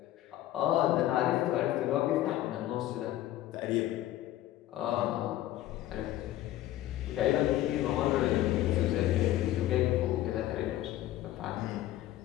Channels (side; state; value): right; quieter; 14.2 dB